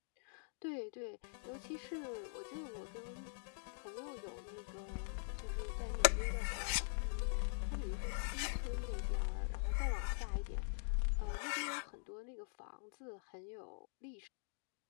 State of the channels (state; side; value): silent; right; digital silence